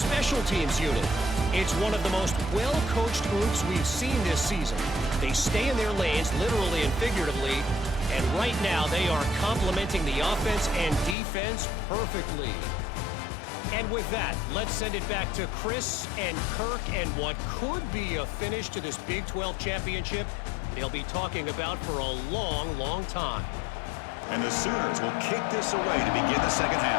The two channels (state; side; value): drops out; right; at 11.2 s